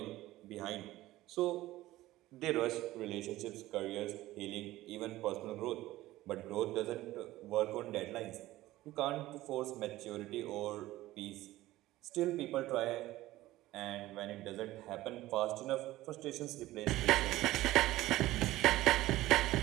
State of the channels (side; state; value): left; quieter; 16.5 dB